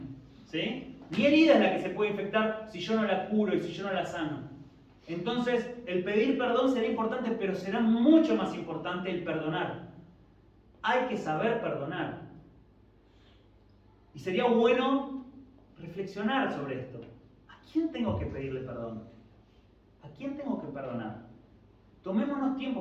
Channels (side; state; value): both; identical; correlation 1.00